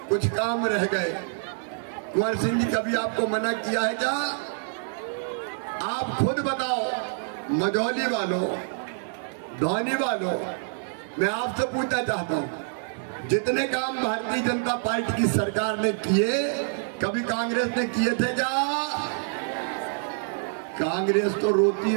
कुछ काम रह गए। कुंवर सिंह जी कभी आपको मना किया है क्या? आप खुद बताओ, मझौली वालों, धौनी वालों, मैं आपसे पूछना चाहता हूं, जितने काम भारतीय जनता पार्टी की सरकार ने किए, कभी कांग्रेस ने किए थे क्या? कांग्रेस तो रोती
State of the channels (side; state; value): left; silent; digital silence